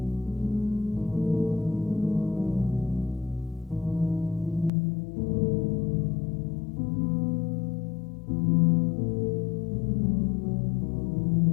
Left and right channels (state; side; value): drops out; right; at 4.7 s